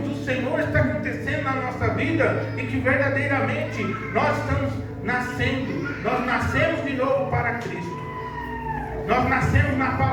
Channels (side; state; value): both; identical; correlation 1.00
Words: do Senhor está acontecendo na nossa vida e que verdadeiramente nós estamos nascendo. Nós nascemos de novo para Cristo. Nós nascemos na